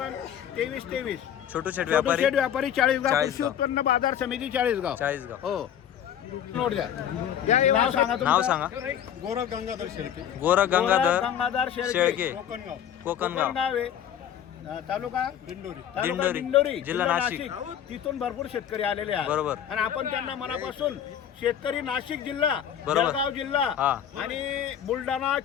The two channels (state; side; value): quieter; right; 9.6 dB